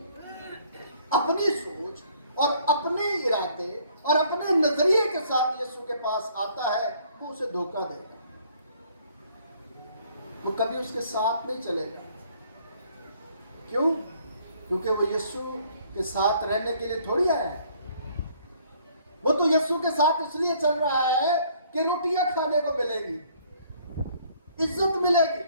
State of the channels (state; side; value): inverted; both; correlation -0.61